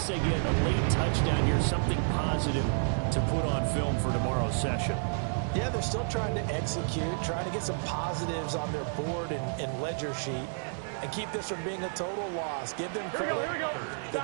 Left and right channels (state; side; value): silent; left; digital silence